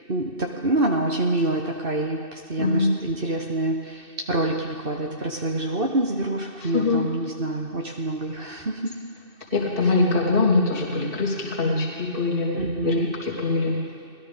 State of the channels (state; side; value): late; left; 2.6 ms